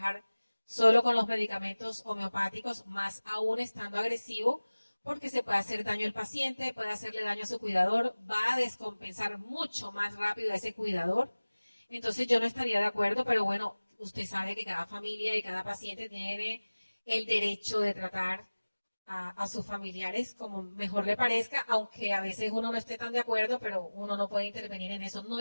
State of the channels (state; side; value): inverted; both; correlation -1.00